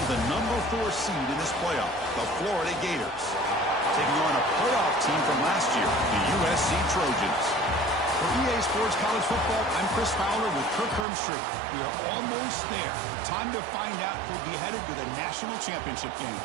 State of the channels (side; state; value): left; drops out; at 11.1 s